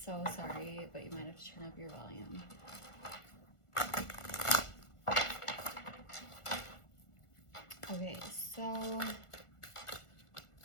so sorry, but you might have to turn up your volume. Okay, so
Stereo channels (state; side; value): late; right; 1.4 ms